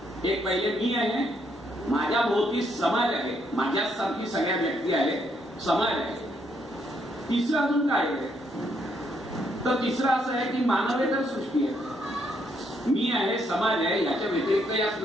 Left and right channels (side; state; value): both; normal; correlation 0.73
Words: एक पहिले मी आहे, माझ्या भोवती समाज आहे, माझ्यासारखी सगळ्या व्यक्ती आहेत, समाज आहे. तिसरं अजून काय आहे तर तिसरं असं आहे की मानवेतर सृष्टी आहे. मी आहे, समाज आहे, याच्या व्यतिरिक्त या